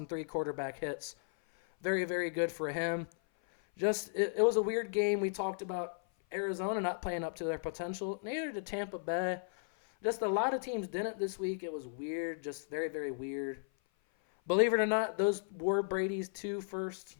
3 quarterback hits. Very, very good for him. It was a weird game. We talked about Arizona not playing up to their potential. Neither did Tampa Bay. Just a lot of teams didn't this week. It was weird. Just very, very weird. Believe it or not, those were Brady's 2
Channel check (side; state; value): right; silent; 54 dB below the other